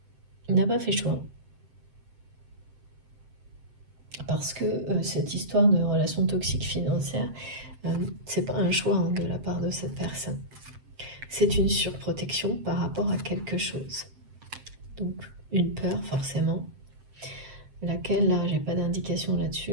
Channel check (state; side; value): late; left; 7.7 ms